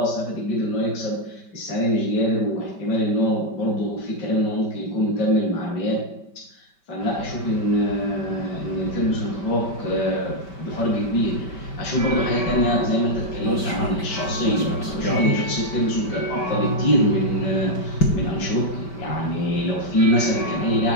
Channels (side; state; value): right; late; 5.2 ms